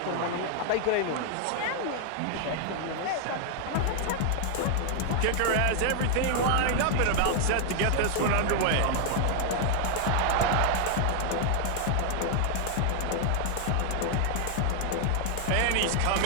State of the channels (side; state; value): both; different; correlation 0.00